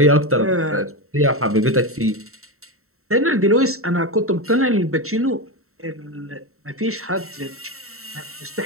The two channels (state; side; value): late; left; 0.63 ms